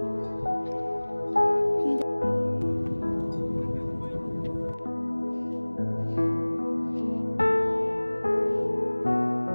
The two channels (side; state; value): both; inverted; correlation -1.00